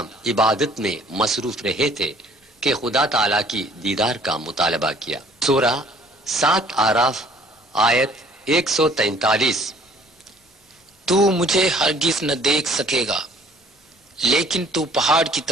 عبادت میں مصروف رہے تھے کہ خدا تعالیٰ کی دیدار کا مطالبہ کیا۔ سورہ 7 آراف آیت 143۔ تو مجھے ہرگز نہ دیکھ سکے گا، لیکن تو پہاڑ کی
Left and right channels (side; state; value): both; normal; correlation 0.57